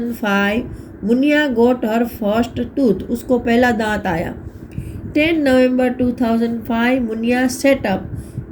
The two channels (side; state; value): both; identical; correlation 1.00